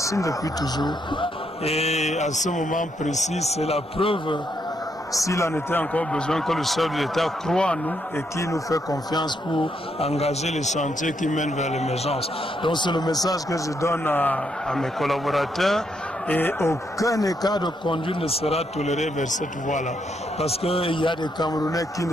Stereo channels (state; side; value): normal; both; correlation 0.77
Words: depuis toujours. Et à ce moment précis, c'est la preuve, s'il en était encore besoin, que le chef de l'État croit en nous et qui nous fait confiance pour engager les chantiers qui mènent vers l'émergence. Donc c'est le message que je donne à mes collaborateurs. Et aucun écart de conduite ne sera toléré vers cette voie-là. Parce qu'il y a des Camerounais qui